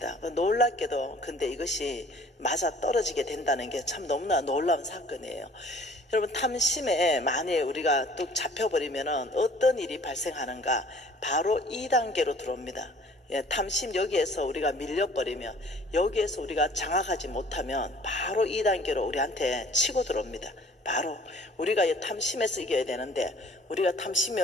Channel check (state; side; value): normal; both; correlation 0.53